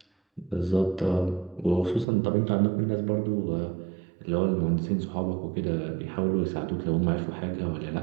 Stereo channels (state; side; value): drops out; left; at 2.1 s